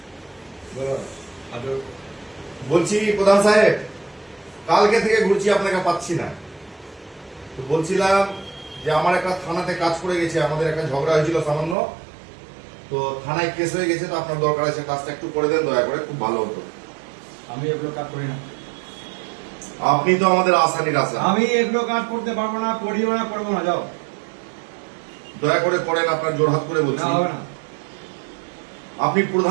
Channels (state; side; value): drops out; left; at 11.8 s